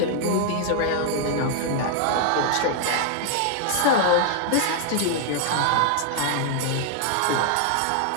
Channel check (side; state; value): both; different; correlation 0.00